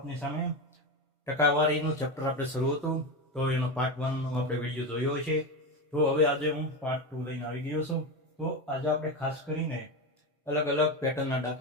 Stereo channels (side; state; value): both; normal; correlation 0.17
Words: સામે. ટકાવારીનું ચેપ્ટર આપણે શરૂ હતું તો એનો પાર્ટ 1 નો આપણે વિડીયો જોયો છે. તો હવે આજે હું પાર્ટ 2 લઈને આવી ગયો છું. તો આજે આપણે ખાસ કરીને અલગ અલગ પેટર્નના